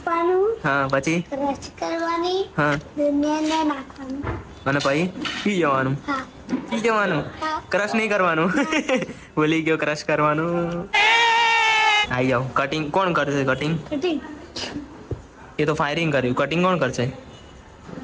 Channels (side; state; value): both; identical; correlation 1.00